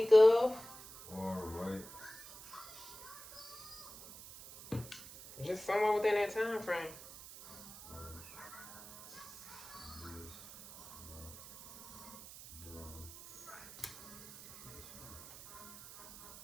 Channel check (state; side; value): noise; right; hiss, 15 dB below the sound